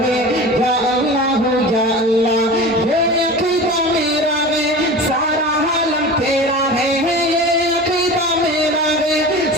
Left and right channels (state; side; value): normal; both; correlation 0.34